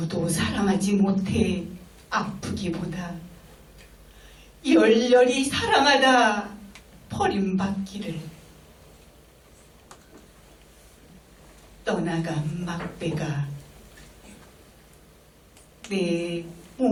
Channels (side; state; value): both; identical; correlation 1.00